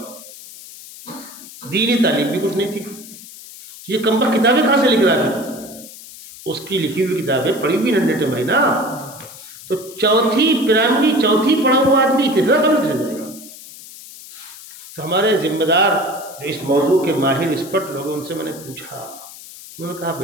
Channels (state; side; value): noise; left; hiss, 16 dB below the sound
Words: دینی تعلیم بھی کچھ نہیں تھی۔ یہ کمبخت کتابیں کہاں سے لکھ رہا ہے؟ اس کی لکھی ہوئی کتابیں پڑھی ہوئی ننڈے ٹمائی نا، تو چوتھی پیراملی چوتھی پڑھا ہوا آدمی اتنا کم لکھ جائے گا۔ تو ہمارے ذمہ دار جو اس موضوع کے ماہر ایکسپرٹ لوگ، ان سے میں نے پوچھا، انہوں نے کہا